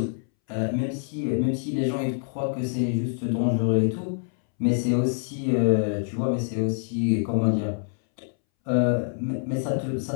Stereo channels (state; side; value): silent; right; 61 dB below the other